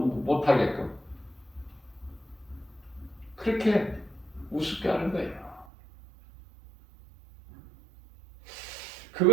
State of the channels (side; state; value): left; drops out; at 5.7 s